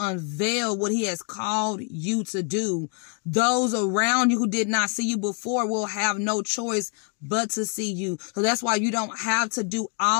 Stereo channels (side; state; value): right; quieter; 39.3 dB